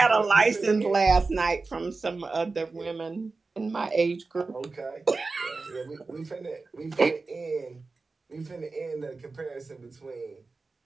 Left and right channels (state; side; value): quieter; left; 3.9 dB